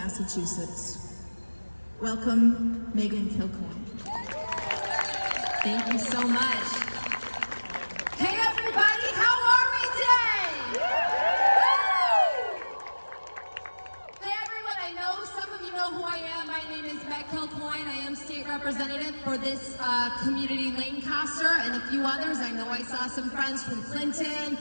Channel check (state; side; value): inverted; both; correlation -1.00